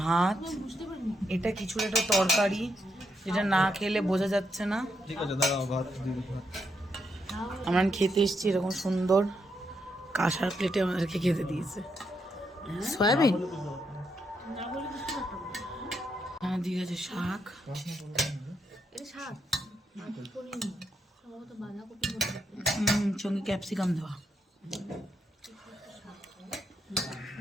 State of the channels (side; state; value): both; normal; correlation 0.80